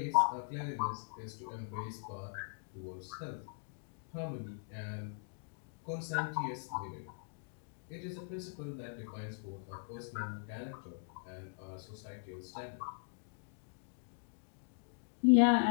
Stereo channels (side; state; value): right; silent; digital silence